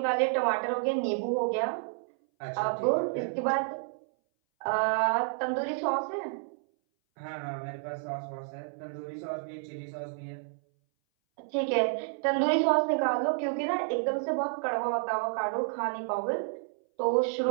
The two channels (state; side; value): silent; left; 58 dB below the other